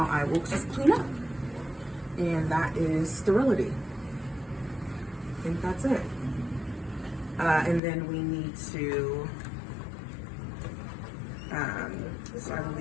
I will just clean up. And that is sterility. I think that's it. And then we need to, so I will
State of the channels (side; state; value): right; drops out; at 7.8 s